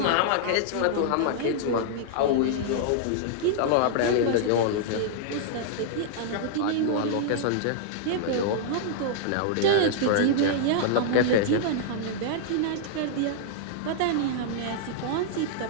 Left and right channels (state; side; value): different; both; correlation -0.01